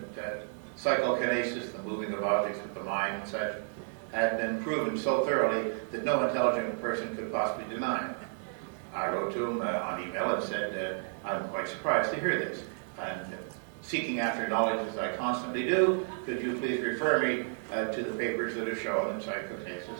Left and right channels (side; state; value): left; silent; digital silence